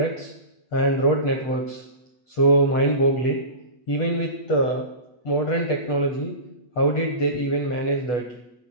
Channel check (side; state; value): right; late; 8.1 ms